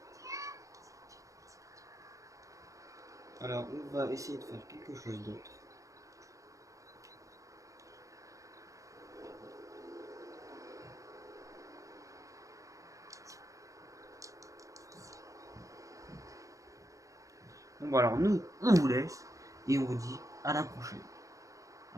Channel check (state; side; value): late; left; 0.16 ms